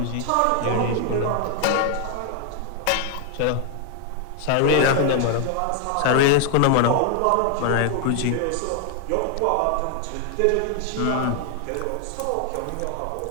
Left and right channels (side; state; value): both; different; correlation 0.00